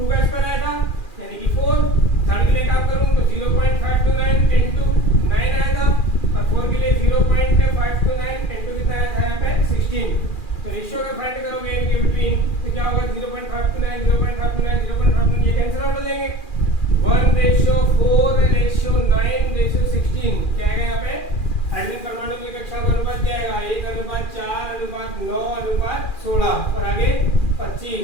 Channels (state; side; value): late; right; 2.4 ms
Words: का स्क्वायर आया था यानी कि 4। थर्ड के लिए काम करूं तो 0.529 into 9 आया था और 4 के लिए 0.529 into कितना आया था यहाँ पे 16। तो रेशियो अगर फाइंड करोगे इनके बिटवीन तो क्या होगा 0.529 0.529 0.529 ये कैंसिल आउट हो जाएंगे। 1:4:9:16 क्या आएगा यहाँ पे हाइड्रोजन परमाणु की कक्षाओं का अनुपात जाएगा 1:4:9:16 और आगे